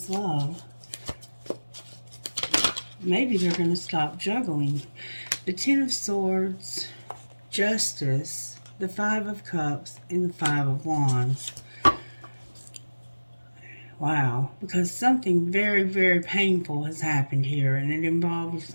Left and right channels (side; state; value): both; inverted; correlation -1.00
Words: love? Maybe they're going to stop juggling. The Ten of Swords, Justice, the Five of Cups, and the Five of Wands. Wow, because something very painful has happened here, and it involves